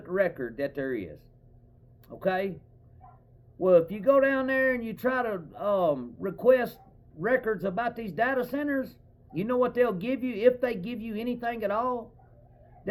record that there is. Okay? Well, if you go down there and you try to request records about these data centers, you know what they'll give you, if they give you anything at all?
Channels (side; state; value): both; identical; correlation 1.00